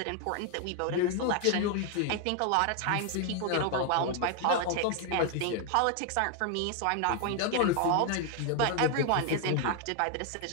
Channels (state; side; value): different; both; correlation 0.00